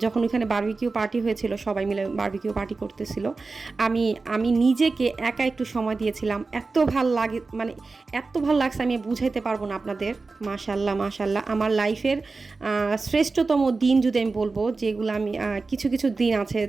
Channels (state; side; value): quieter; left; 3.9 dB